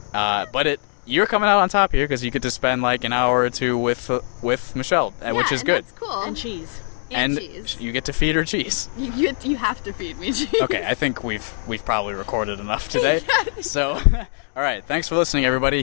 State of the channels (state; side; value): silent; right; digital silence